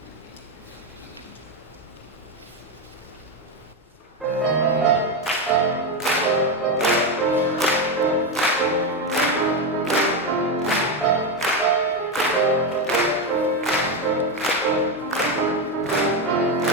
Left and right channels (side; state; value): both; normal; correlation 0.10